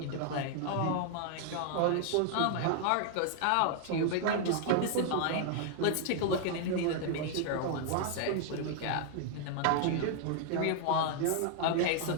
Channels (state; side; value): different; both; correlation 0.00